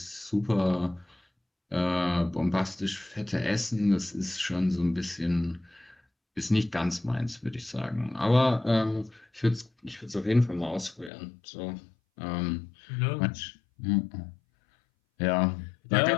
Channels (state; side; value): drops out; right; at 11.1 s